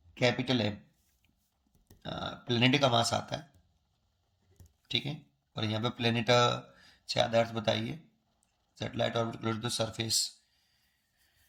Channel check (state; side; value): identical; both; correlation 1.00